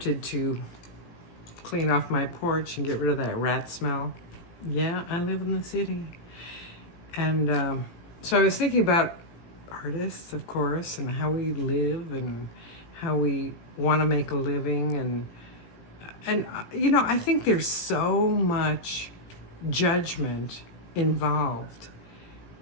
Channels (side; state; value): right; late; 18 ms